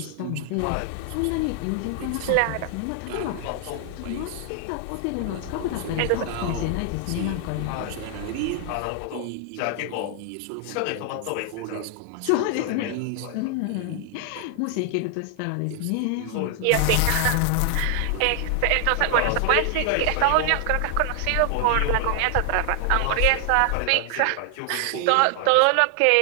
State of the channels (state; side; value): different; both; correlation 0.00